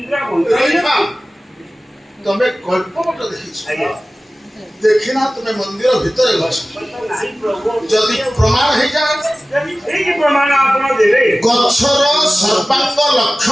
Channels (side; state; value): both; normal; correlation 0.97